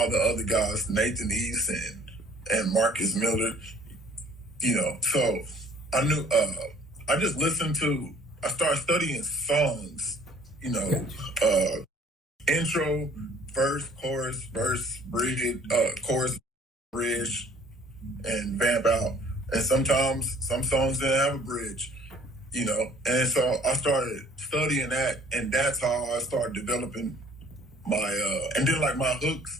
the other guys, Nathan East and Marcus Miller. So I knew, I just listened I started studying songs, intro, verse, chorus, bridge, chorus, bridge, and vamp out. And sometimes some songs didn't have a bridge, and so I started studying that, and that's how I started developing my, and then like my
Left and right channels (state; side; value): normal; both; correlation 0.55